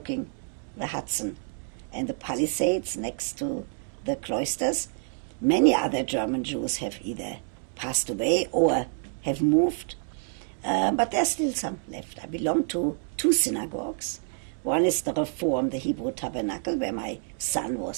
the Hudson and the Palisades next to the cloisters. Many other German Jews have either passed away or have moved, but there's still some left. I belong to 2 synagogues. One is the Reform, the Hebrew Tabernacle, where my son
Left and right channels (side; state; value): left; silent; 59 dB below the other